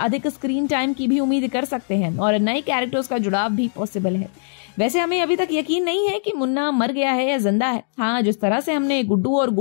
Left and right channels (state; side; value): silent; right; digital silence